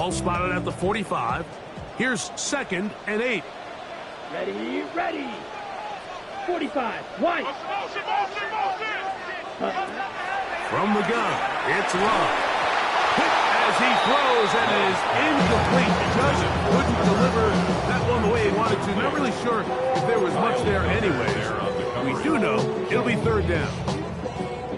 spotted at the 45. Here's 2nd and 8. Ready. 45. White. From the gun, it's Love. Hit as he throws and is incomplete. Just couldn't deliver much there anyways. We do know it'll be third down.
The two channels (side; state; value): both; identical; correlation 1.00